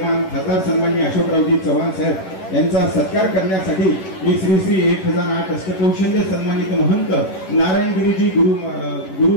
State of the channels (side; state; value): right; late; 11 ms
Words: खासदार सन्माननीय अशोकरावजी चव्हाण साहेब यांचा सत्कार करण्यासाठी मी श्री श्री 1008 अष्टकौशल्य सन्मानित महंत नारायणगिरीजी गुरु